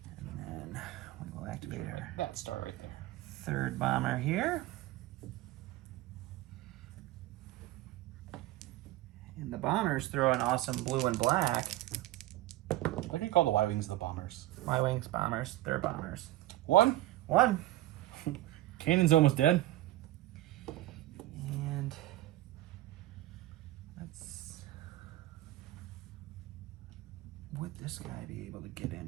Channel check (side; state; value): left; quieter; 16.1 dB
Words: And then we will activate our That star right there. 3rd bomber here. And the bombers throw an awesome blue and black. I can call the Y-Wings the bombers. Y-Wings, bombers, they're bombers. One. Cannon's almost dead. And would this guy be able to get